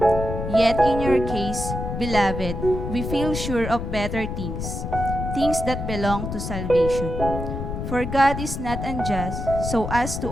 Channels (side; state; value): left; noise; rumble, 5 dB below the sound